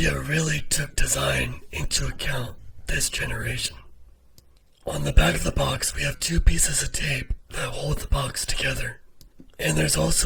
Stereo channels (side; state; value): both; identical; correlation 1.00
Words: really took design into account this generation. On the back of the box, we have two pieces of tape that hold the box together. And there's